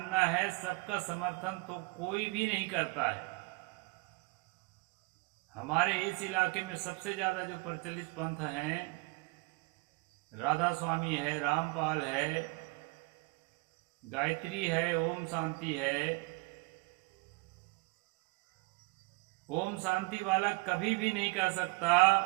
है सबका समर्थन तो कोई भी नहीं करता है। हमारे इस इलाके में सबसे ज्यादा जो प्रचलित पंथ हैं, राधा स्वामी है, रामपाल है, गायत्री है, ओम शांति है। ओम शांति वाला कभी भी नहीं कह सकता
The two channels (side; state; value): left; quieter; 25.8 dB